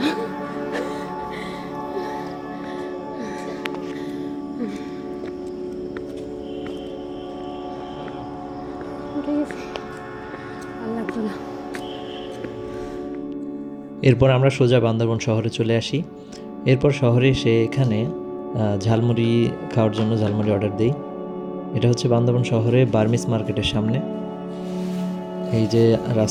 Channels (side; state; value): both; identical; correlation 1.00